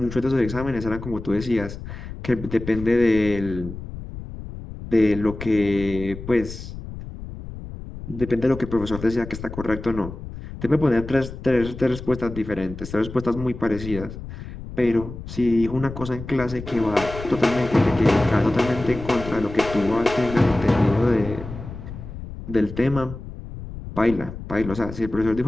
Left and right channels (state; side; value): noise; left; rumble, 11 dB below the sound